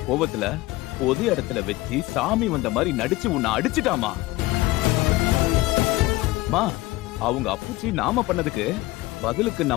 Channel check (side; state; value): right; quieter; 19.5 dB